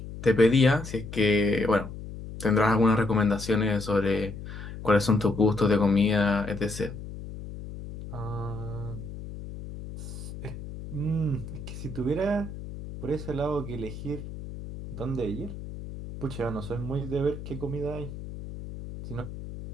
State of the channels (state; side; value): noise; left; hum, 10 dB below the sound